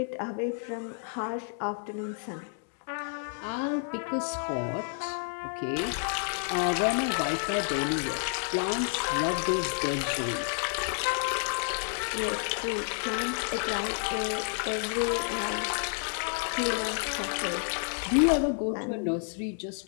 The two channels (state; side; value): silent; right; 58 dB below the other